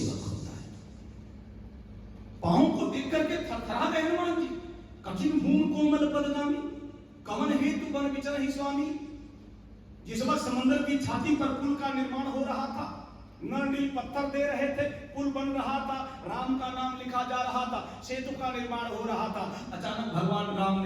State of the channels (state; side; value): identical; both; correlation 1.00